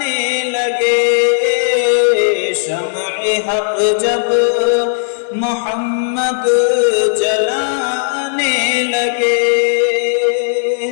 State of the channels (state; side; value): silent; right; digital silence